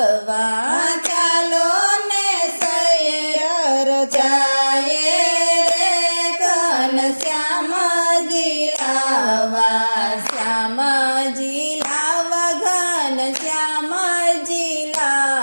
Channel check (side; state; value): both; inverted; correlation -1.00